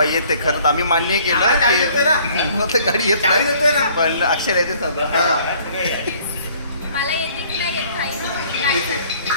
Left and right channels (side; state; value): both; inverted; correlation -0.58